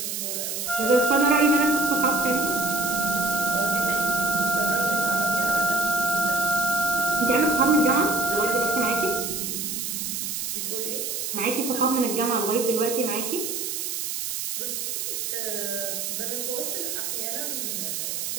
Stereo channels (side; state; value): right; noise; hiss, 3 dB below the sound